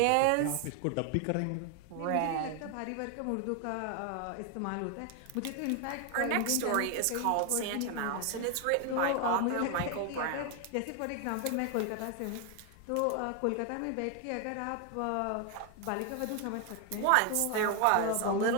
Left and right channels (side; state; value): both; different; correlation 0.01